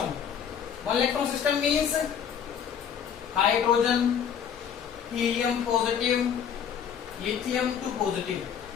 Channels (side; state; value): right; quieter; 8.0 dB